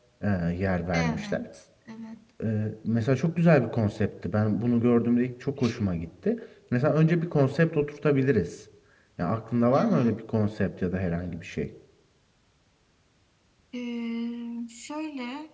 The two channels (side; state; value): both; identical; correlation 1.00